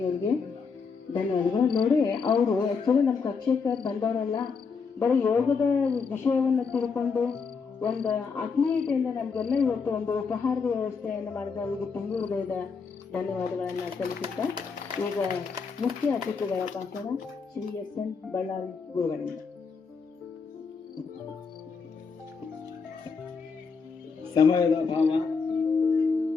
ಅವ್ರಿಗೆ ಧನ್ಯವಾದಗಳು. ನೋಡಿ, ಅವರು ಆ್ಯಕ್ಚುಲಿ ನಮ್ಮ ಕಕ್ಷೆಗೆ ಬಂದವರಲ್ಲ, ಬರೀ ಯೋಗದ ವಿಷಯವನ್ನು ತಿಳ್ಕೊಂಡು ಒಂದು ಆತ್ಮೀಯತೆಯಿಂದ ನಮಗೆಲ್ಲ ಇವತ್ತು ಒಂದು ಉಪಹಾರದ ವ್ಯವಸ್ಥೆಯನ್ನು ಮಾಡಿದ ಅವರಿಗೆ ತುಂಬ ಹೃದಯದ ಧನ್ಯವಾದಗಳನ್ನು ಸಲ್ಲಿಸುತ್ತಾ, ಈಗ ಮುಖ್ಯ ಅತಿಥಿಗಳ ಭಾಷಣ ಶ್ರೀ SN ಬಳ್ಳಾರಿ ಗುರುಗಳಿಂದ. ಸಮಯದ ಭಾವ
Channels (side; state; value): right; quieter; 5.3 dB